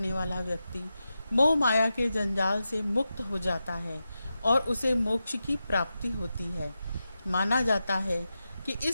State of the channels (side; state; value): both; inverted; correlation -0.90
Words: वाला व्यक्ति मोह माया के जंजाल से मुक्त हो जाता है और उसे मोक्ष की प्राप्ति होती है। माना जाता है कि